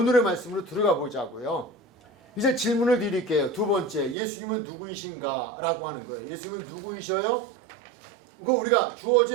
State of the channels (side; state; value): left; drops out; at 4.2 s